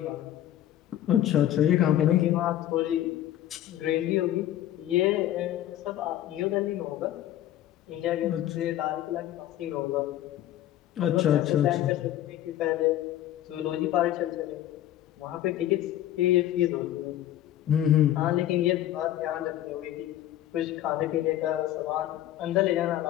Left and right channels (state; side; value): quieter; right; 12.7 dB